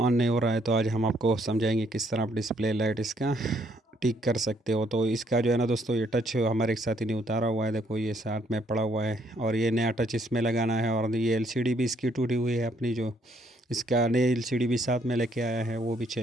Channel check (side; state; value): both; normal; correlation 0.69